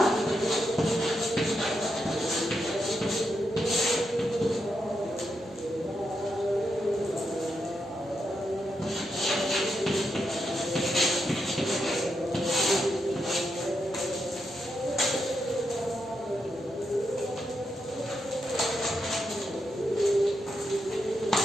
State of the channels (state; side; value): normal; both; correlation 0.84